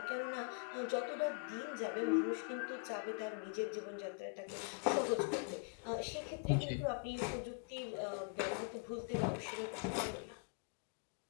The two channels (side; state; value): right; quieter; 39.7 dB